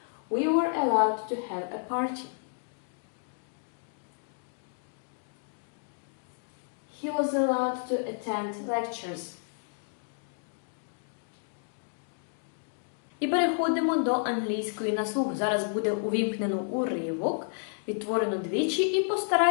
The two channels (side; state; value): right; silent; digital silence